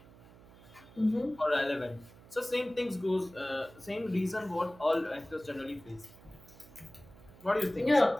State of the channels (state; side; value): noise; right; hum, 22 dB below the sound